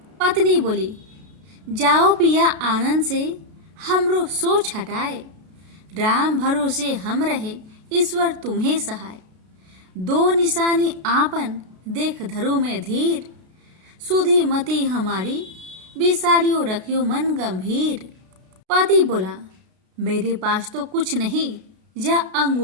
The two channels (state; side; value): late; left; 32 ms